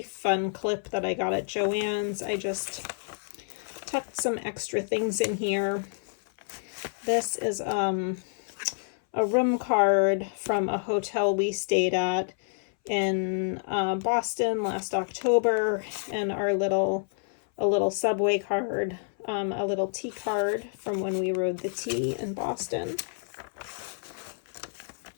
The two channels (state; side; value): silent; right; 59 dB below the other